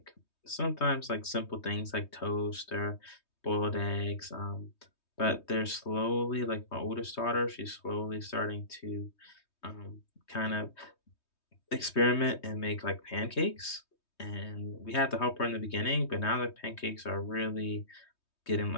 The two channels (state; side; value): late; right; 3.2 ms